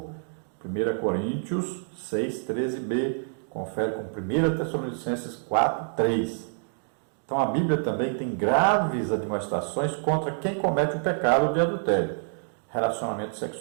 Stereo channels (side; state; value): left; silent; digital silence